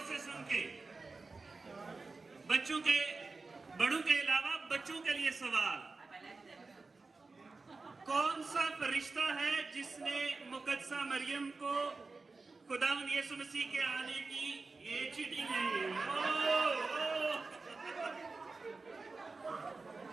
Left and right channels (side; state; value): left; quieter; 3.9 dB